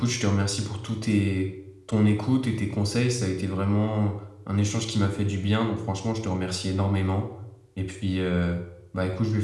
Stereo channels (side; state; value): both; identical; correlation 1.00